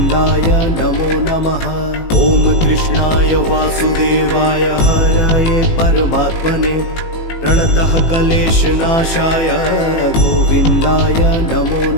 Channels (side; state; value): right; late; 18 ms